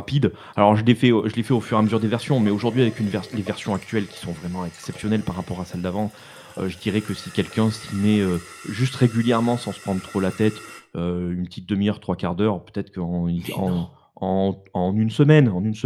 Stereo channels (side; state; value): both; identical; correlation 1.00